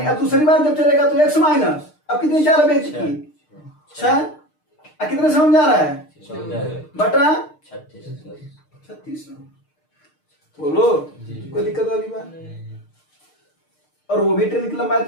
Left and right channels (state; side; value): late; right; 6.6 ms